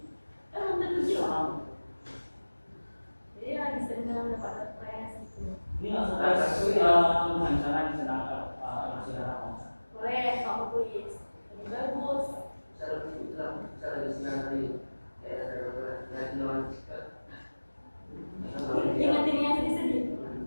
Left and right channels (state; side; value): inverted; both; correlation -1.00